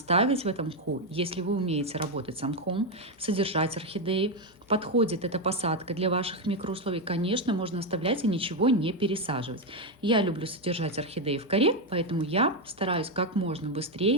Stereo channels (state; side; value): normal; both; correlation 0.06